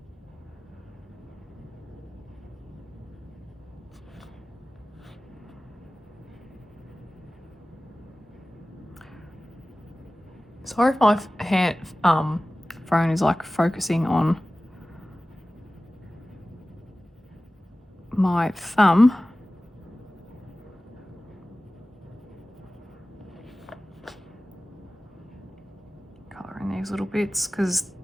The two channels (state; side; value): normal; both; correlation 0.97